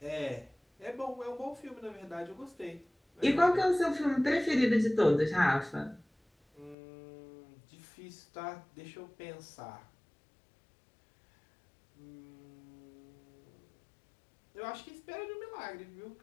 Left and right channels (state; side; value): drops out; right; at 6.8 s